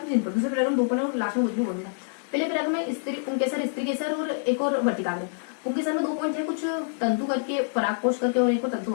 में 3 पढ़, दूसरे पैराग्राफ में 2 पढ़े, और लास्ट में कुछ भी बोलना था। पहले पैराग्राफ में स्त्री केसर और एक और वर्तिकाग्र। पुंकेसर में 2 पॉइंट थे, कुछ तंतु करके, परागकोश करके, और एक और तंतु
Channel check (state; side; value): silent; right; 61 dB below the other